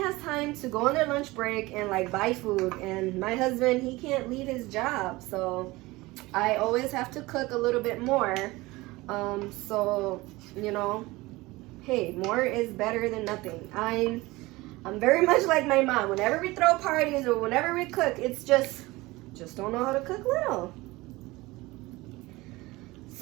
has time to go on their lunch break and like buy food? And my husband, he can't leave his job, so I always have to cook a little bit more. So, you know, hey, more is better than nothing. I'm very much like my mom. Whenever we throw parties or whenever we cook, it's just don't know how to cook little.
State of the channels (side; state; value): left; quieter; 20.9 dB